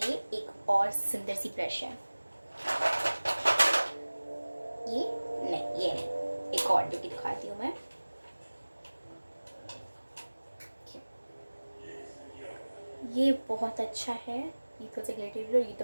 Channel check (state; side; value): inverted; both; correlation -1.00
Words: एक और सुंदर सी ब्रश है, ये नहीं, एक और जो कि दिखाती हूँ मैं। ये बहुत अच्छा है, ये थोड़ा सा ग्लिटरी और